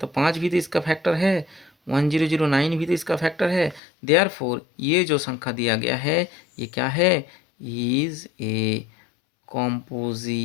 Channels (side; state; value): right; drops out; at 3.8 s